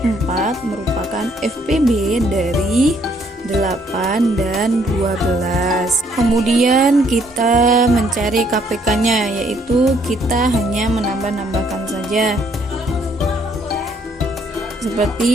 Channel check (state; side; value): normal; both; correlation 0.67